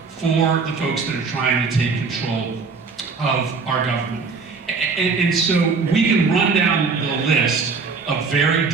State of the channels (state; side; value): quieter; left; 4.7 dB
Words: for the folks that are trying to take control of our government. And so we can run down the list of very